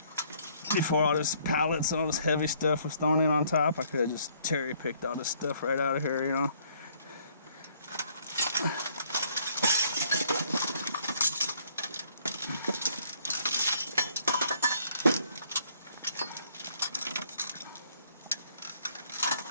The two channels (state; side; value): inverted; both; correlation -0.63